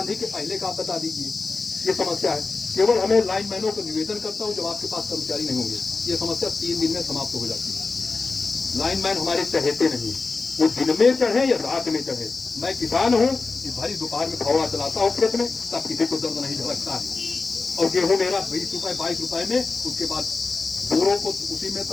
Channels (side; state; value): right; quieter; 4.0 dB